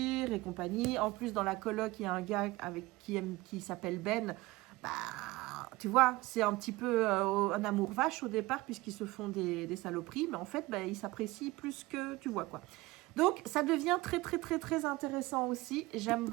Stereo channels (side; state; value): left; quieter; 20.3 dB